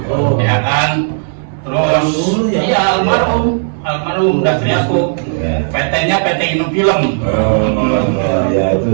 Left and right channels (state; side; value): silent; left; digital silence